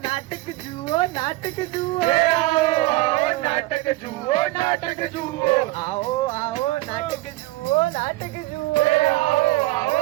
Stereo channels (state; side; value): quieter; left; 19.4 dB